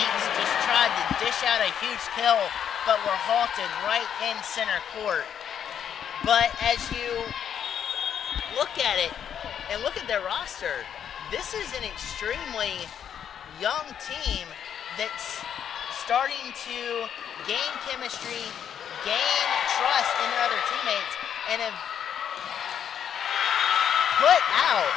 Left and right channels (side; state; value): right; quieter; 8.8 dB